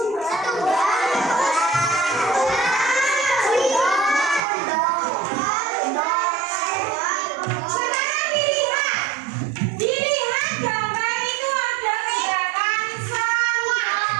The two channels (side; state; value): left; drops out; at 4.4 s